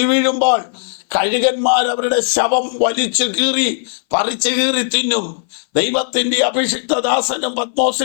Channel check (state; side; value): silent; right; 62 dB below the other